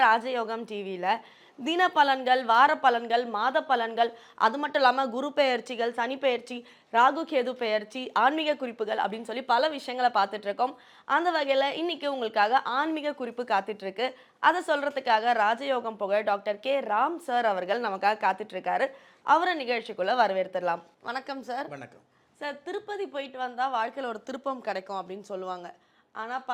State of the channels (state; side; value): identical; both; correlation 1.00